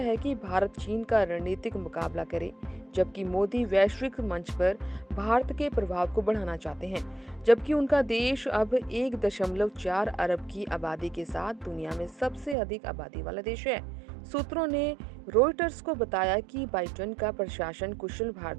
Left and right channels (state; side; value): drops out; left; at 12.6 s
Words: कि भारत चीन का रणनीतिक मुकाबला करे, जबकि मोदी वैश्विक मंच पर भारत के प्रभाव को बढ़ाना चाहते हैं। जबकि उनका देश अब 1.4 अरब की आबादी के साथ दुनिया में सबसे अधिक आबादी वाला देश है। सूत्रों ने रॉयटर्स को बताया कि बाइडेन का प्रशासन कुशल